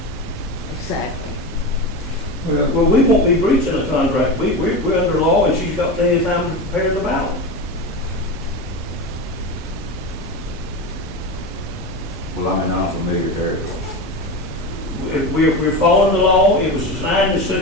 Exactly. Well, we won't be breaching a contract. We're under law, and she's got plenty of time to prepare the ballot. Well, I'm in unfamiliar territory. We're following the law. It was designed in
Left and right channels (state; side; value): normal; both; correlation 0.22